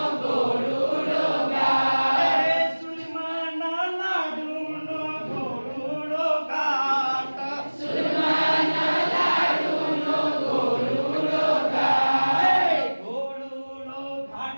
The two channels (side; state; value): both; inverted; correlation -1.00